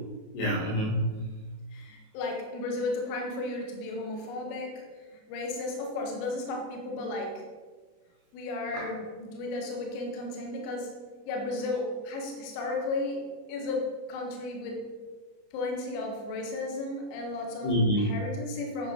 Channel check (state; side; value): late; right; 28 ms